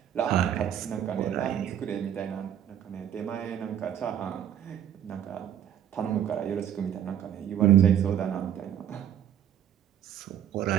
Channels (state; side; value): quieter; left; 10.0 dB